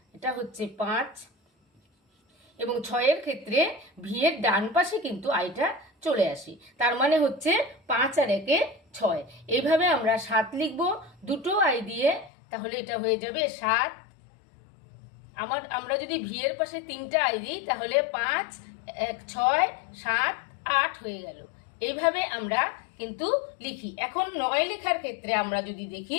এটা হচ্ছে 5, এবং 6-এর ক্ষেত্রে ভি এর ডান পাশে কিন্তু আইটা চলে আসে। তার মানে হচ্ছে 5 আর 1 6। এইভাবে আমরা 7 লিখব দুটো আই দিয়ে, তাহলে এটা হয়ে যাবে 7। আমরা যদি ভি এর পাশে 3টা আই দিই, তাহলে 5 1 6 7 8 হয়ে গেল। এইভাবে আমরা কিন্তু লিখি। এখন 9 লেখার ক্ষেত্রে আমরা যদি দেখি,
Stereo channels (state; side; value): drops out; right; at 12.3 s